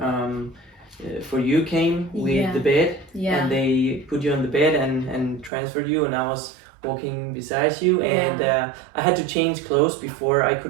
you came with the bed, and they put you on the bed and transferred you, and I was walking beside you, and I had to change clothes before I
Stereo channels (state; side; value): drops out; left; at 5.5 s